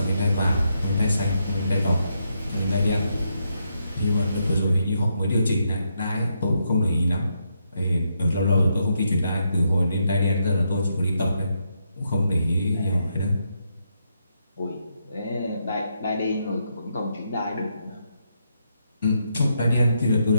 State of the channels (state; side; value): inverted; both; correlation -0.80